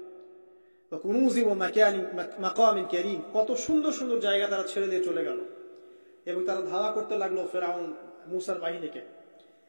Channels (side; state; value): both; inverted; correlation -1.00